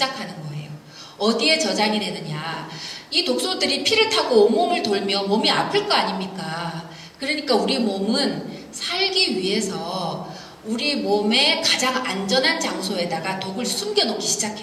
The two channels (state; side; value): identical; both; correlation 1.00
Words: 거예요. 어디에 저장이 되느냐? 이 독소들이 피를 타고 온몸을 돌며 몸이 아플 거 아닙니까? 그러니까 우리 몸은 살기 위해서 우리 몸의 가장 안전한 장소에다가 독을 숨겨놓기